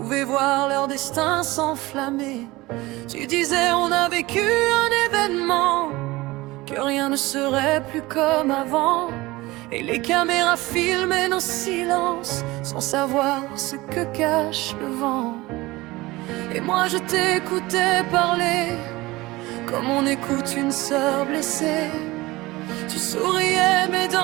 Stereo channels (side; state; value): left; quieter; 20.4 dB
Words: voir leur destin s'enflammer. Tu disais on a vécu un événement, que rien ne serait plus comme avant, et les caméras filmaient nos silences sans savoir ce que cache le vent. Et moi je t'écoutais parler comme on écoute une sœur blessée. Tu souriais mais